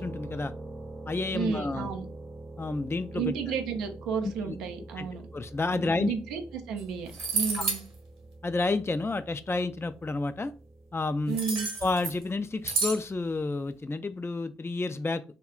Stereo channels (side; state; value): both; normal; correlation 0.71